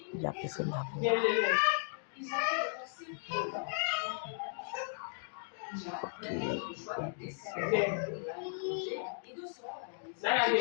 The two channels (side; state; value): right; silent; digital silence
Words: il y a personne d'amour.